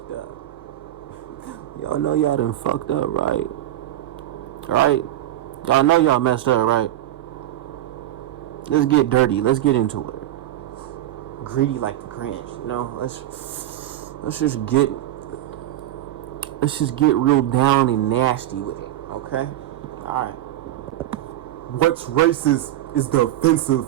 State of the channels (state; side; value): quieter; left; 13.4 dB